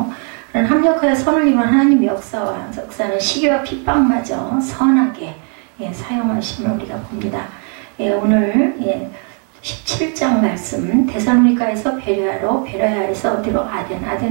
합력하여 선을 이룬 하나님의 역사는 시기와 핍박마저 선하게 사용하심을 우리가 봅니다. 오늘 17장 말씀 데살로니가에서 베레아로 베레아에서 어디로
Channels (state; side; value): quieter; left; 39.1 dB